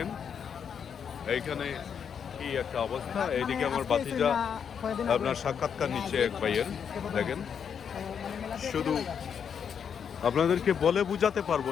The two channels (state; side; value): quieter; right; 7.4 dB